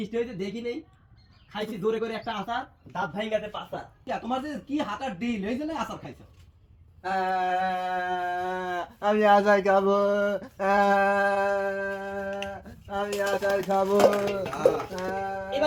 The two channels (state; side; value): identical; both; correlation 1.00